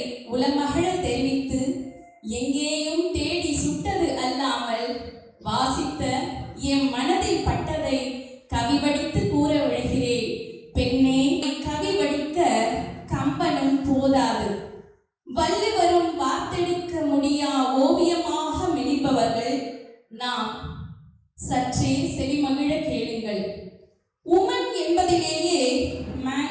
உலமகள தெரிவித்து எங்கேயும் தேடி சுட்டது அல்லாமல் வாசித்த என் மனதில் பட்டதை கவி படித்து கூற விழுகிறேன். பெண்ணே, கவி படிக்க கம்பனும் போதாது, வள்ளுவரும் வார்த்தெடுக்க முடியா ஓவியமாக மிளிப்பவர்கள் நாம். சற்றே செவிமகிழ கேளுங்கள். உமன் என்பதிலேயே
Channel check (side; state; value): both; identical; correlation 1.00